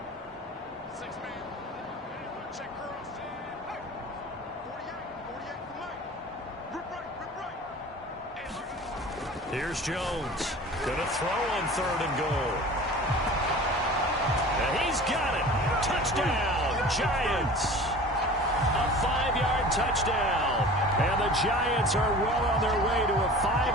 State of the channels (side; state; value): both; normal; correlation 0.40